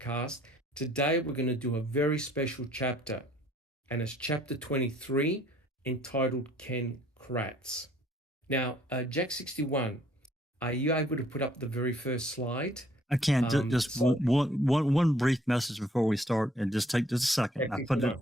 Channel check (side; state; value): both; normal; correlation 0.62